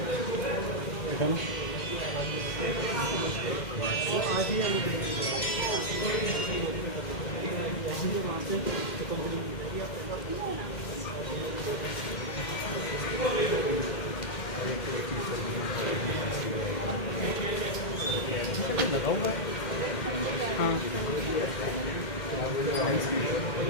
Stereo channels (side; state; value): both; normal; correlation -0.05